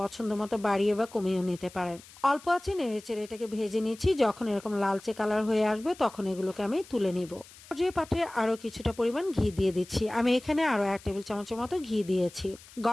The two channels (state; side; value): noise; left; hiss, 21 dB below the sound